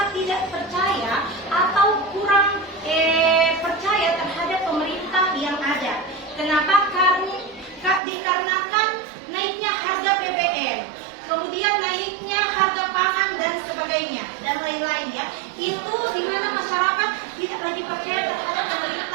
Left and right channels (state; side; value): drops out; left; at 8.0 s